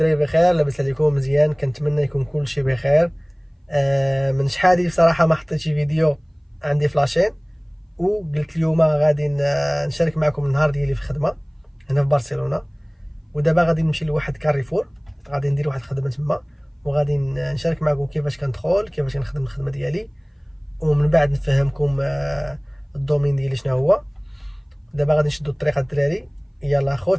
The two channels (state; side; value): identical; both; correlation 1.00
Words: بخير؟ لاباس عليكم مزيان؟ كنتمنى يكون كلشي بخير. من شحال بصراحه ما حطيتش فيديو عندي في لاشين، وقلت اليوم غادي نشارك معكم النهار ديالي في الخدمه هنا في برشلونه. ودابا غادي نمشي لواحد كاريفور، غادي ندير واحد الخدمه تما، وغادي نشارك معكم كيفاش كندخل، كيفاش كنخدم الخدمه ديالي، ومن بعد نفهمكم الدومين ديالي شنو هو. دابا غادي نشدو الطريق الدراري، يلا اخوت